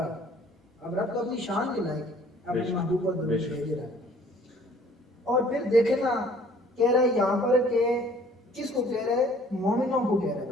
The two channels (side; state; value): both; normal; correlation 0.55